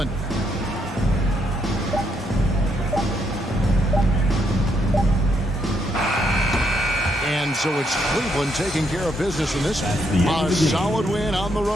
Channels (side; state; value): both; normal; correlation 0.75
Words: And so it's Cleveland taking care of business in this one. A solid win on the